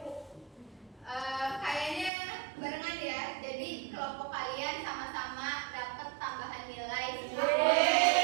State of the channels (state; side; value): drops out; left; at 2.1 s